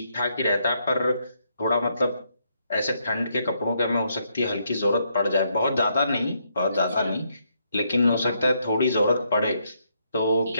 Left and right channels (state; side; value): inverted; both; correlation -0.76